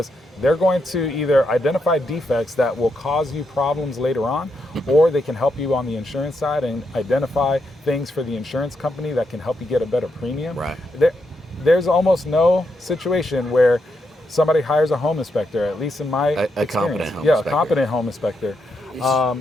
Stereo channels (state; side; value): normal; both; correlation 0.82